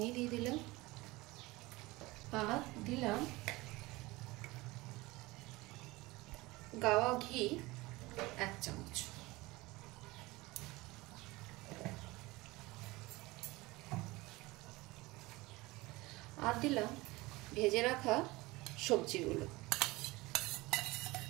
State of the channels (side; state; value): left; quieter; 21.3 dB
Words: দিয়ে দিলাম, আর দিলাম গাওয়া ঘি 1 চামচ। আর দিলাম ভেজে রাখা সবজিগুলো।